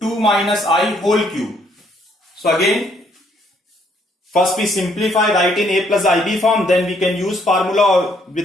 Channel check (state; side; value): normal; both; correlation 0.68